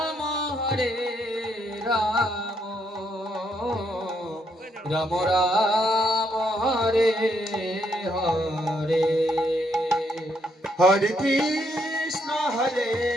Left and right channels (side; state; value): both; normal; correlation 0.74